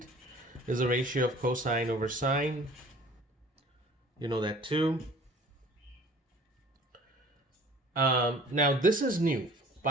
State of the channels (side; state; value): both; normal; correlation 0.49